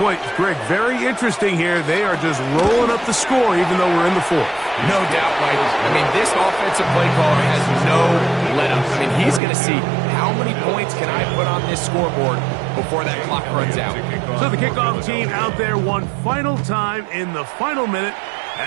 Greg, very interesting here. They are just rolling up the score even though we're in the fourth. No doubt, Mike. I mean, this offensive play caller has no let-up. I mean, he's going to see how many points can I put on this scoreboard before that clock runs out. So the kickoff team out there one final time in the final minute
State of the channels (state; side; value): drops out; left; at 9.4 s